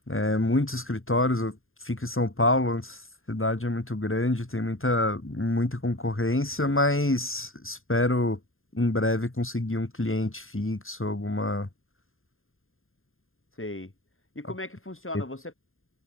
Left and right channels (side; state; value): right; late; 0.60 ms